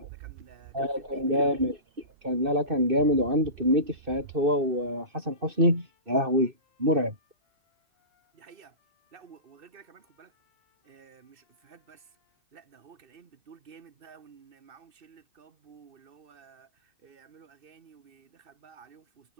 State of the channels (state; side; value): late; left; 2.6 ms